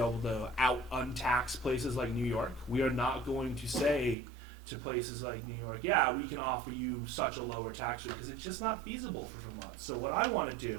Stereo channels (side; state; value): left; drops out; at 4.2 s